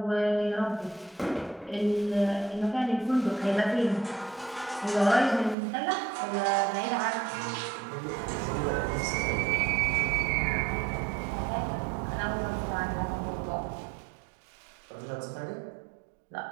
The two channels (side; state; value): left; drops out; at 5.6 s